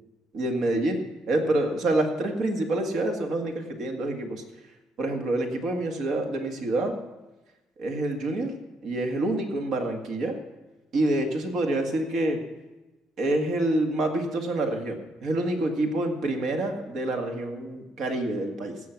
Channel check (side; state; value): both; normal; correlation 0.74